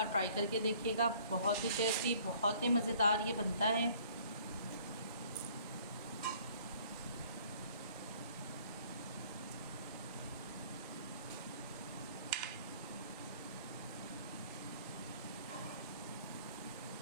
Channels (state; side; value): inverted; both; correlation -0.56